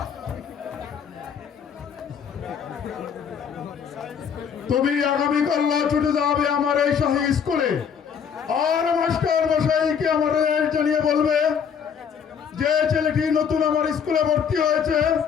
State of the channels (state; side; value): quieter; right; 7.2 dB